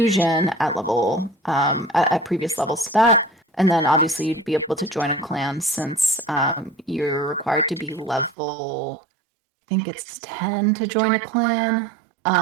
at level at previous levels to that. And then obviously you'd be able to join a clan since you're required to be level, I think it's 10 to join a clan,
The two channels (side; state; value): left; drops out; at 8.3 s